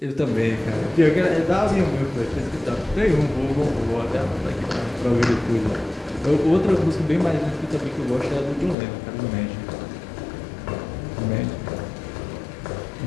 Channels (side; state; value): right; drops out; at 8.8 s